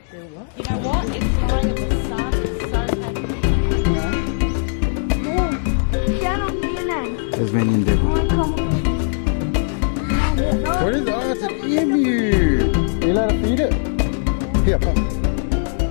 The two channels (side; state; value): right; silent; digital silence